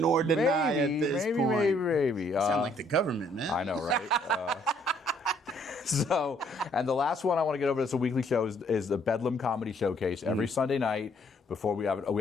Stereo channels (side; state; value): both; normal; correlation 0.65